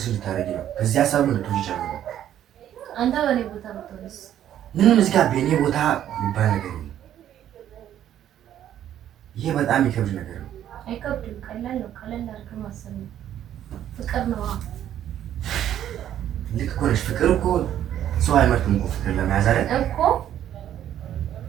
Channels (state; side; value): quieter; left; 11.1 dB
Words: እንድታደርጊ ነው። ከዚህ ሀሳብ እንድትወጪ ይቻላል። አንተ በእኔ ቦታ ብትሆንስ? ምንም እዚህ ጋር በእኔ ቦታ የሚባል ነገር የለም። ይሄ በጣም የሚከብድ ነገር ነው። አይከብድም፣ ቀላል ነው። ቀላል አድርገህ ማሰብ ነው። ፍቅር ነው። ልክ እኮ ነሽ። ፍቅር እኮ ሰው አይመርጥም እኮ ፍቅር ለመያዝ አይደል እኮ።